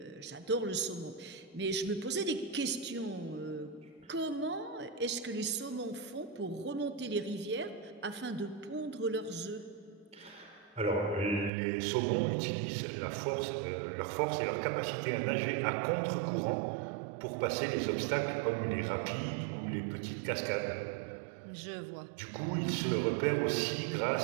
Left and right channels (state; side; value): drops out; left; at 11.5 s